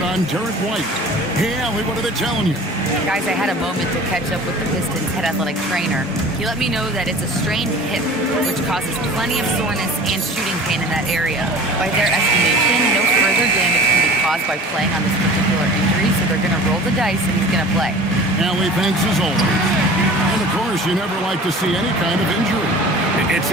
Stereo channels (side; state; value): both; normal; correlation 0.42